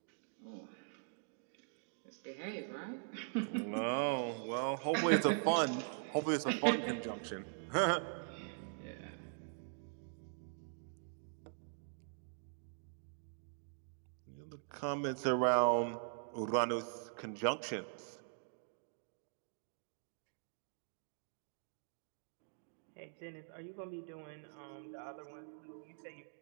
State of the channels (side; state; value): left; silent; digital silence